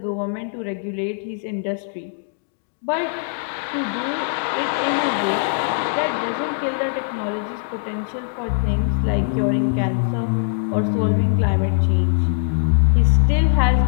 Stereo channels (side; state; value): right; silent; digital silence